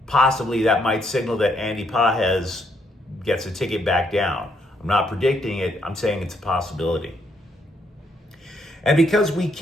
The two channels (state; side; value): normal; both; correlation 0.73